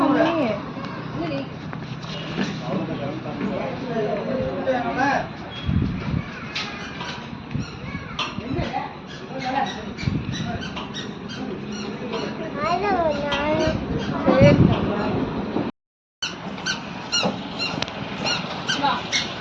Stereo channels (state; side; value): identical; both; correlation 1.00